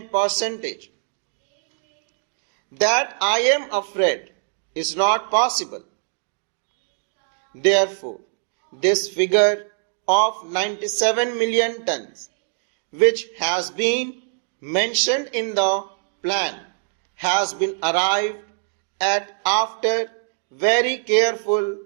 percentage. That I am afraid is not possible. Therefore, this figure of 97 million tons, which has been mentioned in the plan, has been arrived at after very careful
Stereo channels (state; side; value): silent; left; digital silence